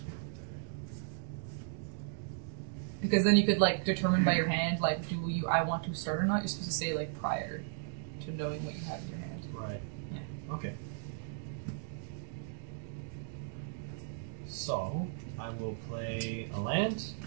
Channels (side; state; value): left; silent; digital silence